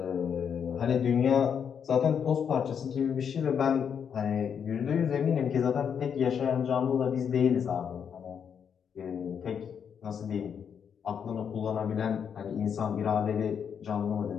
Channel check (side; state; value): right; quieter; 7.5 dB